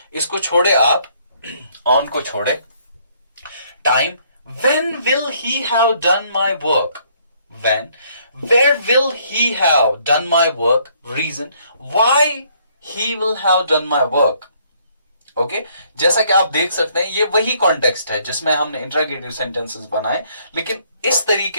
इसको छोड़े आप, ऑन को छोड़े. Time, when will he have done my work, when, where will he have done my work, reason, why he will have done my work. Okay, जैसा कि आप देख सकते हैं ये वही कॉन्टेक्स्ट है जिसमें हमने इंट्रोगेटिव सेंटेंसेस बनाए, लेकिन इस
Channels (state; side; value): inverted; both; correlation -0.66